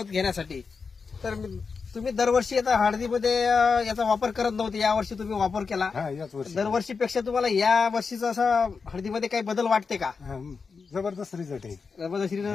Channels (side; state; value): right; quieter; 5.1 dB